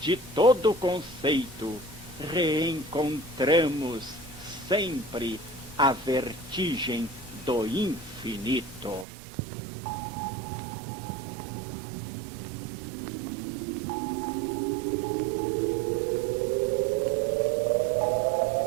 todo conceito, reencontramos sempre a vertigem do infinito.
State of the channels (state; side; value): drops out; left; at 9.1 s